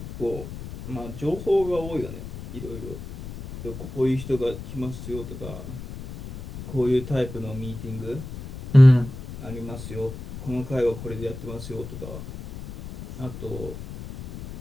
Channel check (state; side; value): noise; left; rumble, 11 dB below the sound